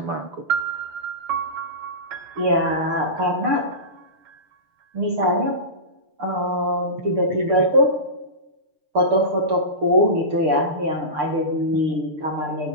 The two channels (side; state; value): left; late; 6.7 ms